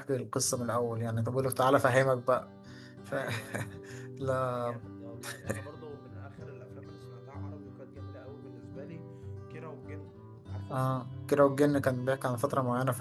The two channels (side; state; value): both; identical; correlation 1.00